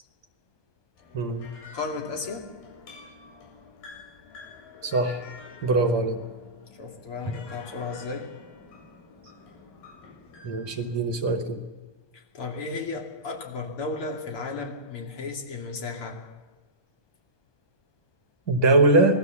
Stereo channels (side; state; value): right; late; 1.2 ms